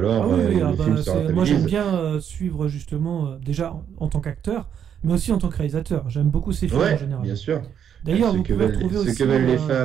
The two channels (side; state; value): left; quieter; 8.7 dB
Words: Ah oui, le film se moi rentabilise. j'aime bien suivre justement, déjà en tant qu'acteur, mais aussi en tant que réalisateur. J'aime beaucoup ces films Ouais, en général. bien sûr. D'ailleurs, Ce vous que pouvez veulent, retrouver ce aussi... que veulent les